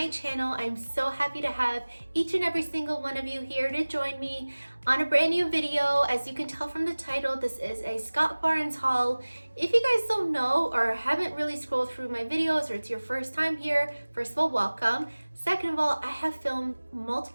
channel. I'm so happy to have each and every single one of you here to join me on a brand new video. As you can tell from the title, this is a Scott Barnes haul. If you guys don't know or haven't really scrolled through my videos, or it's your first time here, first of all, welcome. Second of all, I have filmed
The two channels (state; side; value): inverted; both; correlation -1.00